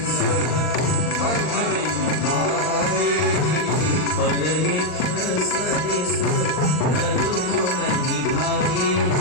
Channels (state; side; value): late; right; 39 ms